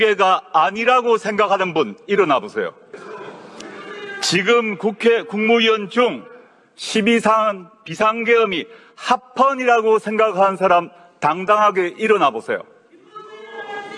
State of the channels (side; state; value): both; identical; correlation 1.00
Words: 아니라고 생각하는 분 일어나 보세요. 지금 국회 국무위원 중 12상 비상계엄이 합헌이라고 생각하는 사람 당당하게 일어나 보세요.